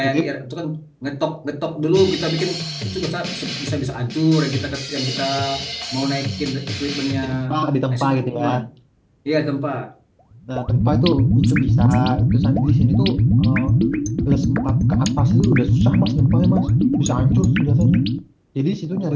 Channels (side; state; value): both; identical; correlation 1.00